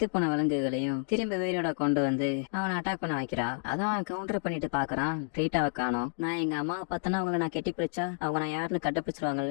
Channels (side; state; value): right; silent; digital silence